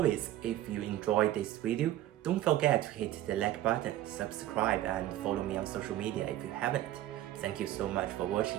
if you enjoyed this video, don't forget to hit the like button, subscribe and follow me on social media if you haven't. Thank you so much for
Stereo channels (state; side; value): quieter; left; 13.7 dB